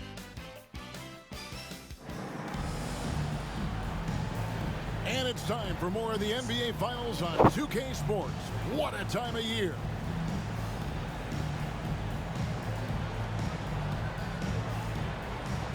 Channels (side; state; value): both; identical; correlation 1.00